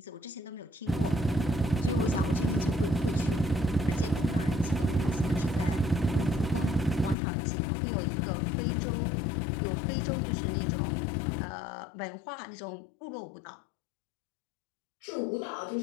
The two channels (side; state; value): right; drops out; at 7.2 s